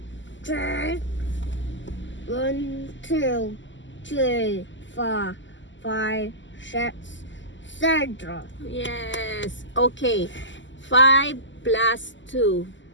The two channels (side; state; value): right; late; 0.54 ms